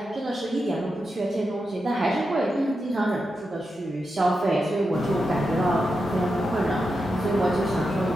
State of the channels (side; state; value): both; normal; correlation 0.88